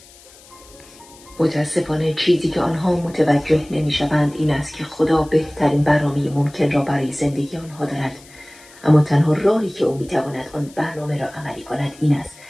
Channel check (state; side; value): noise; left; hiss, 23 dB below the sound